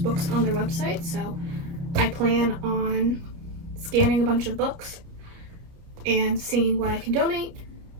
on their website. So I plan on scanning a bunch of books and seeing what I can donate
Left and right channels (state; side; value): late; left; 30 ms